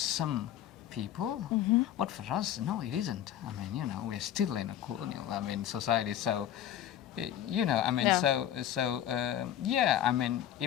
people, but for us, no, it isn't. I mean, you know, we're still in a colonial, I mean, society. So, you know, I mean, I mean,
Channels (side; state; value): right; quieter; 11.2 dB